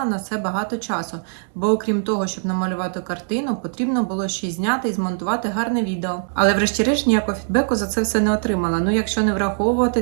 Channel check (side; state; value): left; silent; digital silence